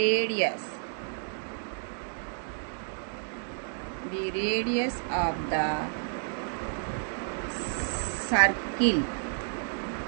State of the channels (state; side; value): silent; left; 57 dB below the other